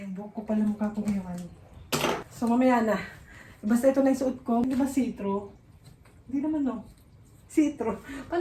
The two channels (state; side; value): identical; both; correlation 1.00